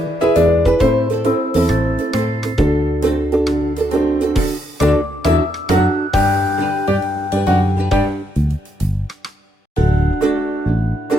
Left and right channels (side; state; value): both; normal; correlation 0.78